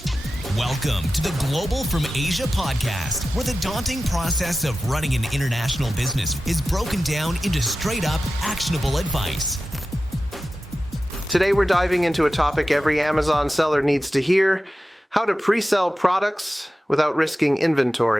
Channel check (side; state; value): both; normal; correlation 0.94